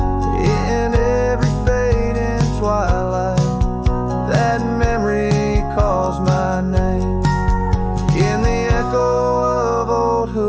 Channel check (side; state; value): both; identical; correlation 1.00